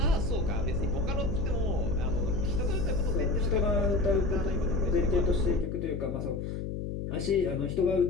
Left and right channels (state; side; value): noise; left; hum, 5 dB below the sound